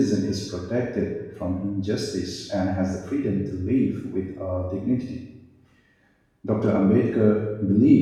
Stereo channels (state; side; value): identical; both; correlation 1.00